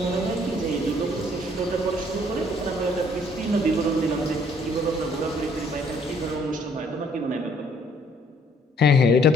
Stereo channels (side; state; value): both; normal; correlation 0.63